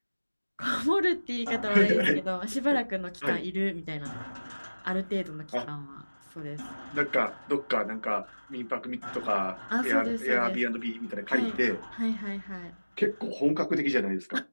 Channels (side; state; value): both; inverted; correlation -1.00